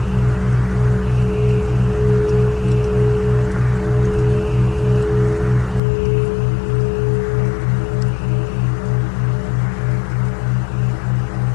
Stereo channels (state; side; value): drops out; right; at 5.8 s